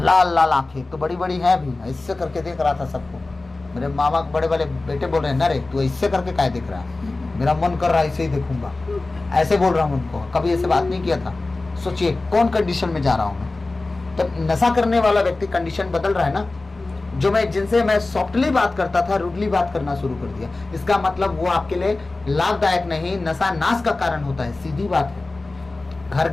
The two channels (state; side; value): quieter; right; 3.2 dB